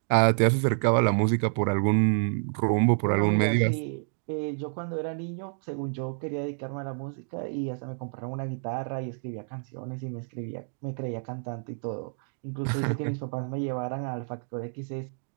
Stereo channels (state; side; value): silent; left; 59 dB below the other